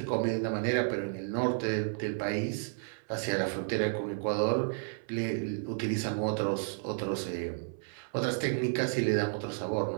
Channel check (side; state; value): left; silent; 56 dB below the other